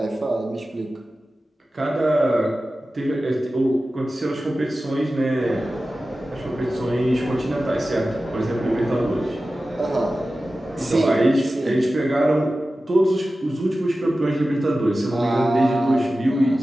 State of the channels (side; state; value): both; normal; correlation 0.95